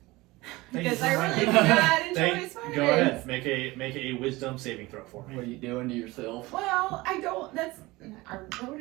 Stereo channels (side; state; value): left; quieter; 21.0 dB